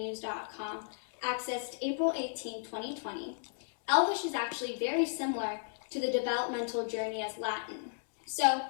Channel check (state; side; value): silent; right; digital silence